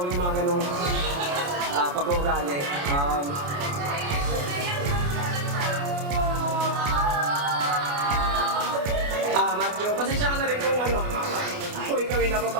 mo yung mga ganong pag-uugali. Matthew, pasensya ka na rin kung ikaw ay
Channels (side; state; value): left; late; 28 ms